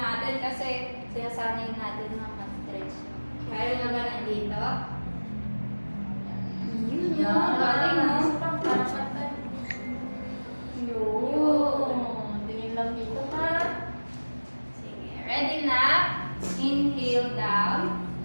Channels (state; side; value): inverted; both; correlation -1.00